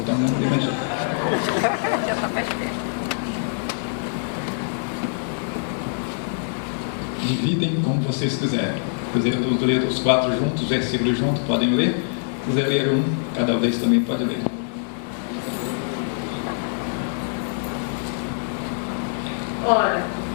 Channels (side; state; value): right; silent; digital silence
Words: não levantou. Dividem como vocês quiserem. Se quiserem ler os 4 juntos, os versículos juntos, podem ler. Se quiser ler um, cada vez também pode ler. Ora,